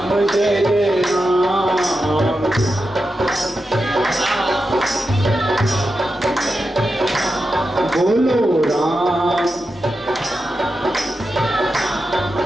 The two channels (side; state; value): both; normal; correlation 0.89